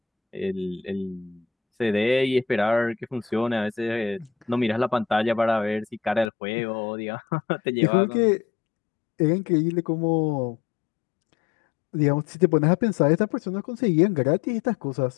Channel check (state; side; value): drops out; right; at 6.2 s